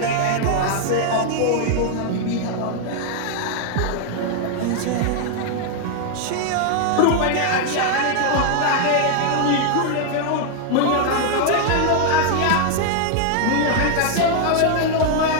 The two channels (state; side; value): different; both; correlation 0.00